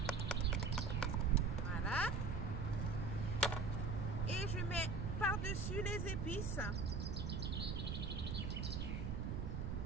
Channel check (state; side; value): noise; right; rumble, 1 dB below the sound